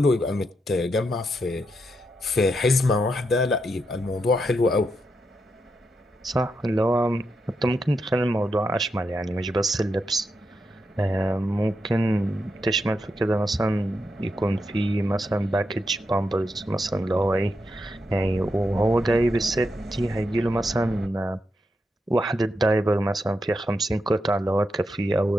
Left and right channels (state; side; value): normal; both; correlation 0.84